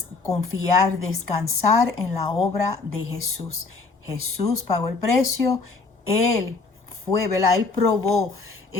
confiar, descansar en la obra de Jesús. Jesús pagó el precio, Él fue, ¿verdad? Él probó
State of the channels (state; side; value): quieter; right; 4.0 dB